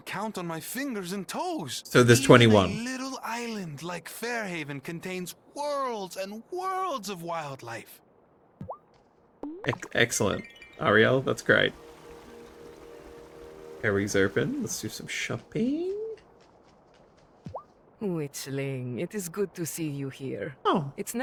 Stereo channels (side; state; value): both; identical; correlation 1.00